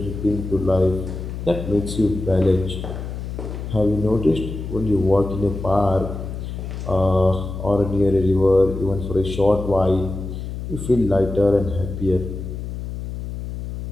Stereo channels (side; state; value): left; noise; hum, 7 dB below the sound